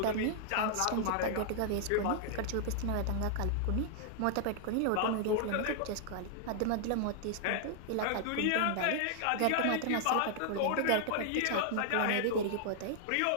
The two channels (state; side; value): different; both; correlation 0.00